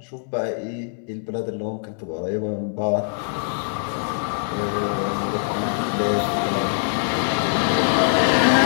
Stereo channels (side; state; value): right; silent; digital silence